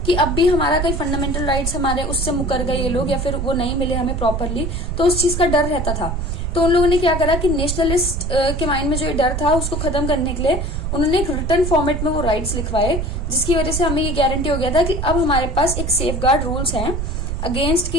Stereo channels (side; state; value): right; noise; rumble, 2 dB below the sound